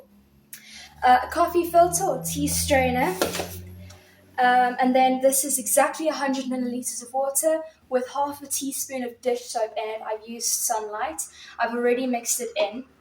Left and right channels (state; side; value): identical; both; correlation 1.00